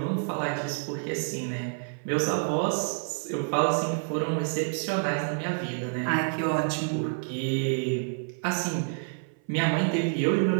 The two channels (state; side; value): silent; left; 56 dB below the other